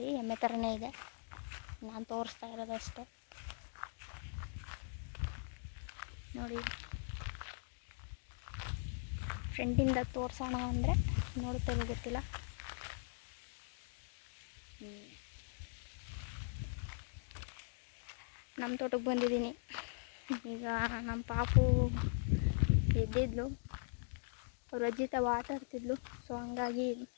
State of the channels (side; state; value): right; silent; digital silence